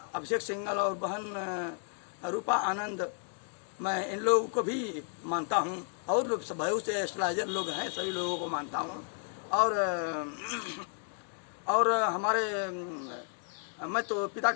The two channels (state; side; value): silent; right; 56 dB below the other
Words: सिंघल और बहन रूपा आनंद, मैं इन लोगों को भी मानता हूँ और बहुत से एस्ट्रोलॉजर लोग हैं, सभी लोगों को मानता हूँ। और हमारे मैं तो पिता